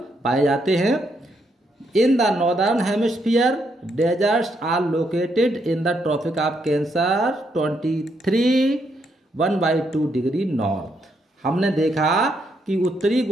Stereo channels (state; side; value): normal; both; correlation 0.77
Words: पाए जाते हैं। In the northern hemisphere deserts are located in the Tropic of Cancer 23 degree north. हमने देखा कि उत्तरी